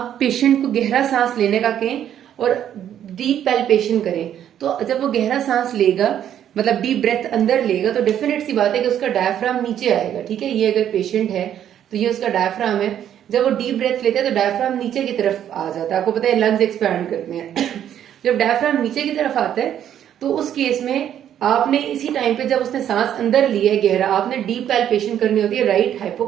पेशेंट को गहरा सांस लेने का कहें और डीप पैल्पेशन करें, तो जब वो गहरा सांस लेगा, मतलब डीप ब्रेथ अंदर लेगा, तो डेफिनेट सी बात है कि उसका डायफ्राम नीचे आएगा। ठीक है, ये अगर पेशेंट है तो ये उसका डायफ्राम है। जब वो डीप ब्रेथ लेता है तो डायफ्राम नीचे की तरफ आ जाता है। आपको पता है लंग्स एक्सपैंड करते हैं जब डायफ्राम नीचे की तरफ आता है तो उस केस में आपने इसी टाइम पे, जब उसने सांस अंदर लिया है गहरा, आपने डीप पैल्पेशन करनी होती है राइट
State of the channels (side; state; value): left; quieter; 10.2 dB